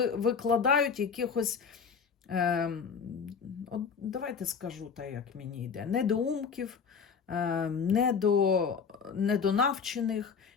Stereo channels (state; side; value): quieter; right; 6.1 dB